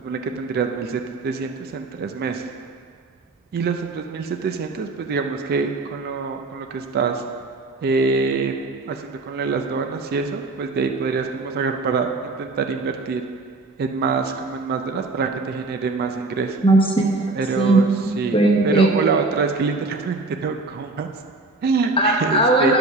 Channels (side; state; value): left; quieter; 3.3 dB